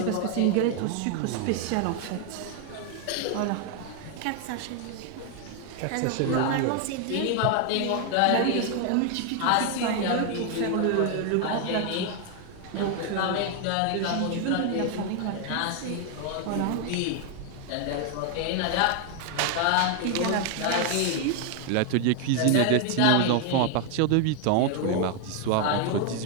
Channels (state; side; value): different; both; correlation 0.00